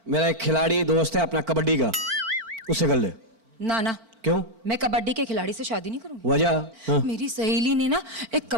मेरा एक खिलाड़ी दोस्त है अपना कबड्डी का, उससे कर ले। ना ना, क्यों? मैं कबड्डी के खिलाड़ी से शादी नहीं करूंगी। वजह? हाँ। मेरी सहेली ने ना एक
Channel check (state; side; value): late; left; 4.5 ms